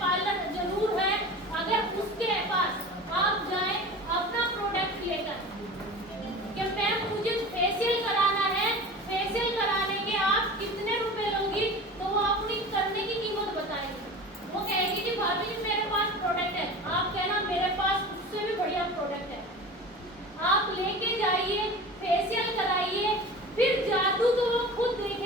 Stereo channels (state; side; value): normal; both; correlation 0.35